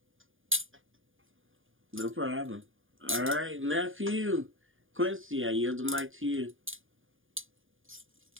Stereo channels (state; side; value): late; left; 0.58 ms